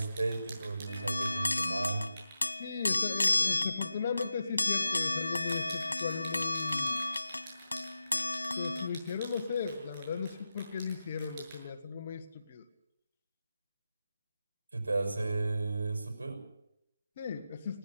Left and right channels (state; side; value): inverted; both; correlation -0.91